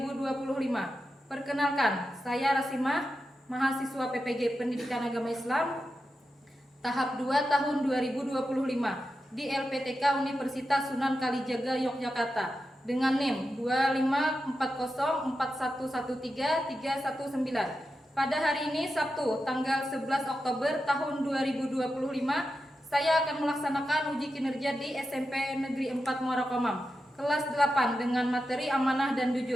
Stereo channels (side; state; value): both; normal; correlation 0.90